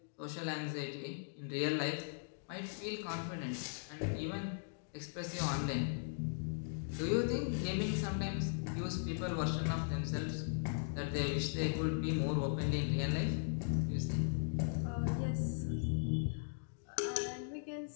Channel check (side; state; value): right; silent; digital silence